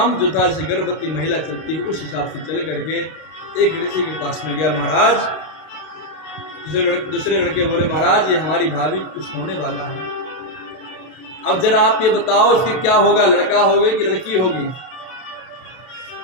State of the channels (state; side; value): late; right; 32 ms